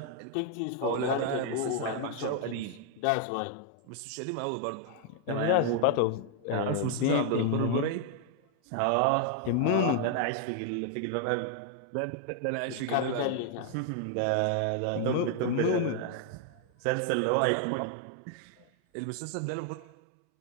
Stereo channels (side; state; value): both; different; correlation 0.00